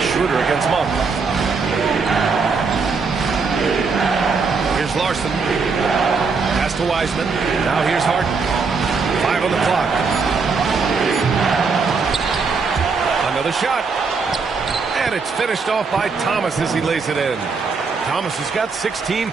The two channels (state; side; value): quieter; left; 4.8 dB